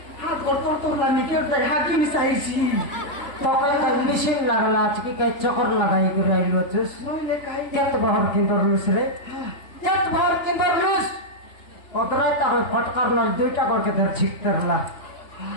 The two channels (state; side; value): late; right; 3.8 ms